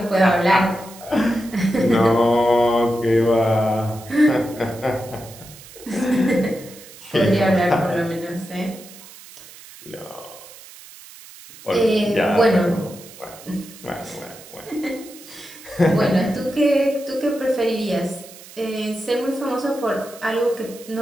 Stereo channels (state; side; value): noise; right; hiss, 19 dB below the sound